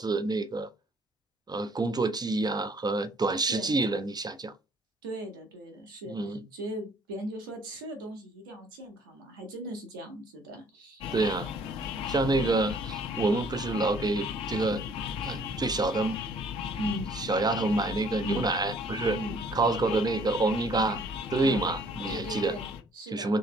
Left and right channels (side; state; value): both; normal; correlation 0.59